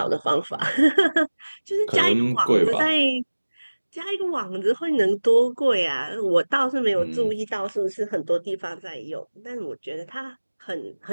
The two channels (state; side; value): inverted; both; correlation -1.00